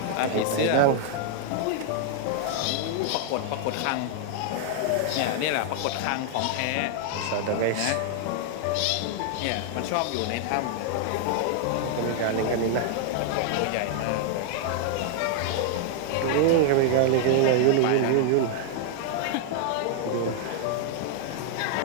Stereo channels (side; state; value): both; different; correlation -0.01